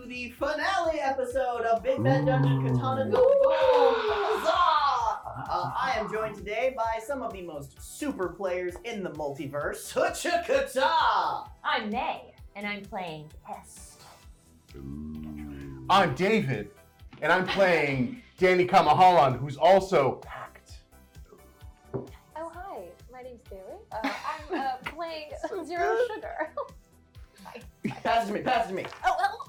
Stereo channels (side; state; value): both; identical; correlation 1.00